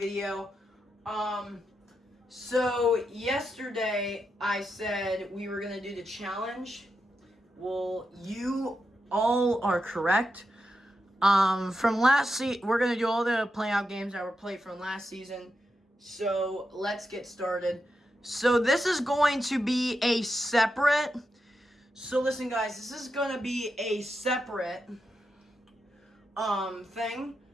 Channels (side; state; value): both; normal; correlation 0.87